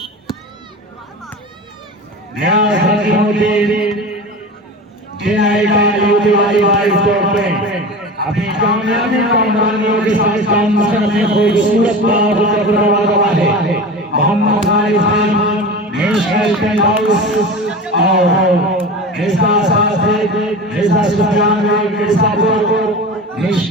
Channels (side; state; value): both; normal; correlation 0.31